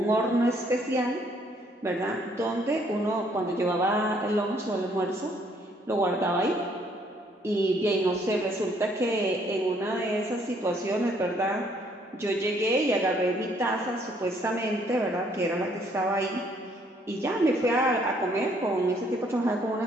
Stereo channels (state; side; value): normal; both; correlation 0.66